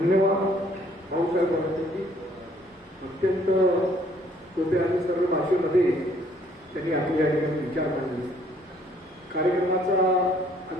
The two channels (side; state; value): both; normal; correlation 0.62